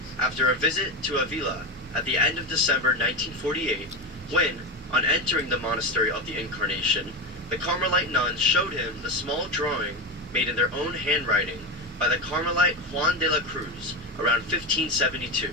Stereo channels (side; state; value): both; normal; correlation 0.17